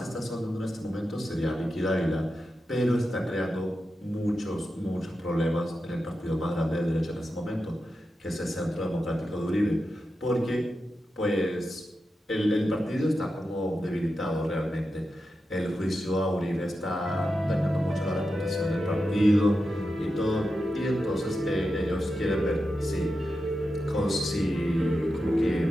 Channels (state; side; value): normal; both; correlation 0.90